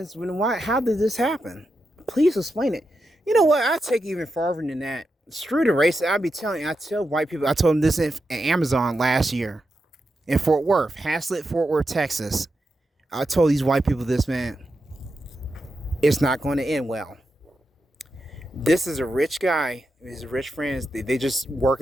then why? How did this happen? Please explain it. You know what? I take it even farther than that. Screw the race. I tell white people. I told them this in Amazon last year in Fort Worth, Haslett, Fort Worth, Texas. I told these white people this, man. It's not going to end well. This is a rich guy. His rich friends. They just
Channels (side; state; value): both; normal; correlation 0.87